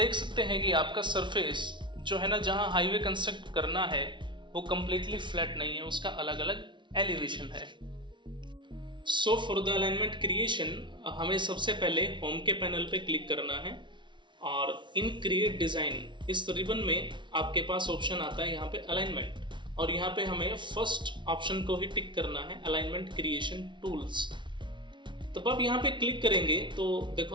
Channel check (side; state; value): left; late; 0.23 ms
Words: सकते हैं कि आपका सरफेस जो है ना, जहाँ हाईवे कंस्ट्रक्ट करना है वो कम्प्लीटली फ्लैट नहीं है, उसका अलग अलग एलिवेशन है। So for the alignment creation हमें सबसे पहले होम के पैनल पे क्लिक करना है और इन क्रिएट डिज़ाइन इस रिबन में आपके पास ऑप्शन आता है यहाँ पे अलाइनमेंट, और यहाँ पे हमें फर्स्ट ऑप्शन को ही टिक करना है, अलाइनमेंट क्रिएशन टूल्स। तब आप यहाँ पे क्लिक करेंगे तो